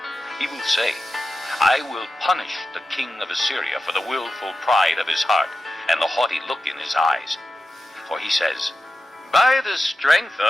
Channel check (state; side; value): normal; both; correlation 0.92